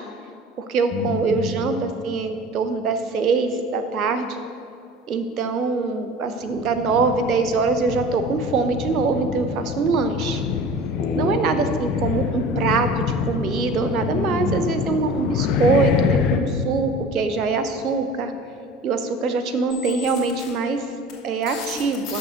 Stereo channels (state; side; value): normal; both; correlation 0.40